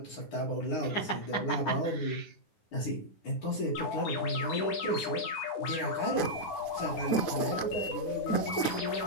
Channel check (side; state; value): right; late; 9.9 ms